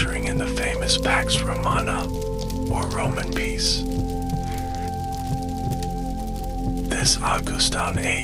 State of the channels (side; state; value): both; identical; correlation 1.00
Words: in the famous Pax Romana, or Roman peace. This Augustan